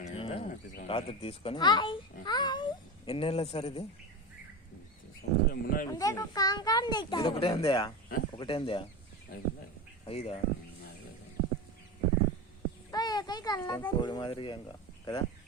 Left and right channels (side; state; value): both; normal; correlation 0.22